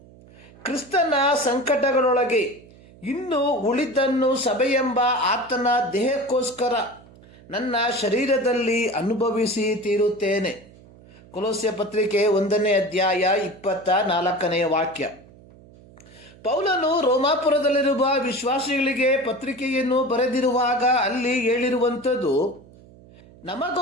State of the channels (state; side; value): noise; right; hum, 23 dB below the sound